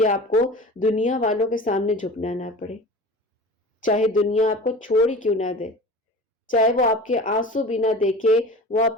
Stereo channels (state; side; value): normal; both; correlation 0.37